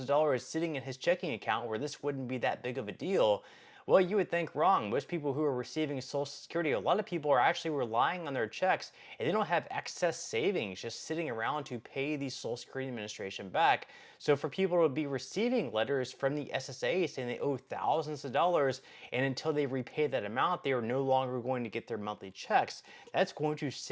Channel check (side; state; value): both; identical; correlation 1.00